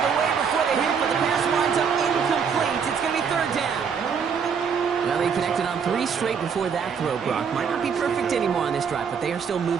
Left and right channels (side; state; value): left; quieter; 6.6 dB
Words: away before the hit, but the pass winds up incomplete. It's going to be 3rd down. Well, they connected on 3 straight before that throw, Brock. Might not be perfect anymore on this drive, but they are still